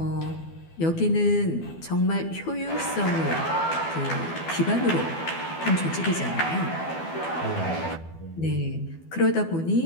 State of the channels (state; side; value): late; right; 12 ms